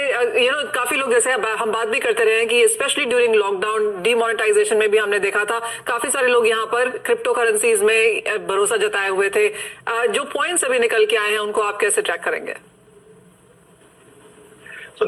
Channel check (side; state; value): both; identical; correlation 1.00